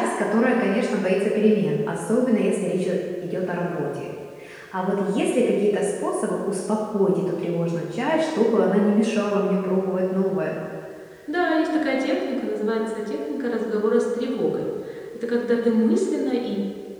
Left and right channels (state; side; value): identical; both; correlation 1.00